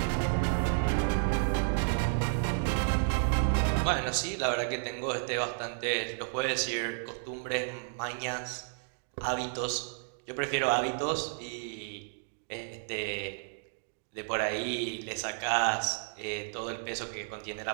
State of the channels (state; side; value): silent; left; digital silence